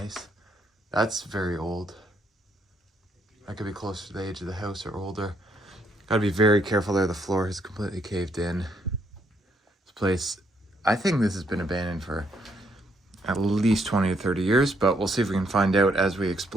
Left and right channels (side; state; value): both; normal; correlation 0.72